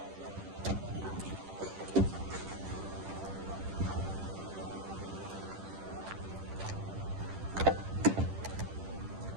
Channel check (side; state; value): left; late; 10 ms